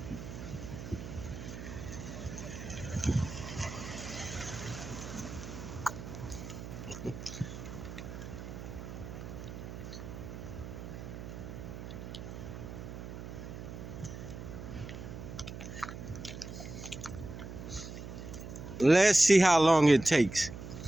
Let's see how long it takes.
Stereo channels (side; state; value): right; noise; hum, 10 dB below the sound